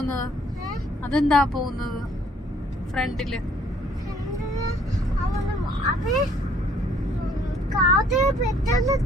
അതെന്താ പോകുന്നത് ഫ്രണ്ടില്?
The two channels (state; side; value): normal; both; correlation 0.61